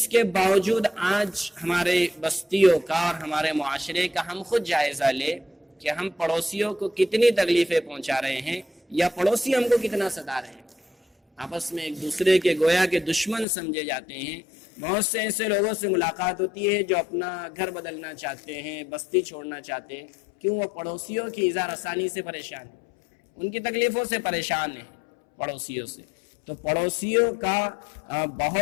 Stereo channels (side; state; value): right; drops out; at 13.5 s